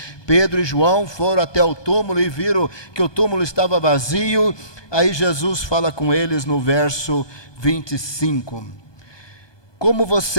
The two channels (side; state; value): right; late; 1.2 ms